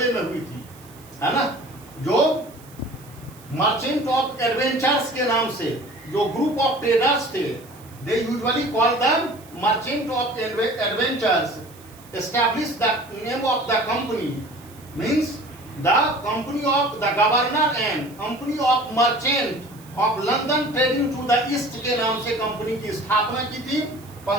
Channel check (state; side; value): noise; right; hiss, 24 dB below the sound